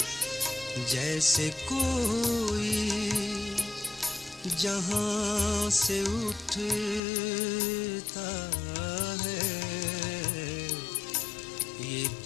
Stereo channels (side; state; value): right; drops out; at 7.0 s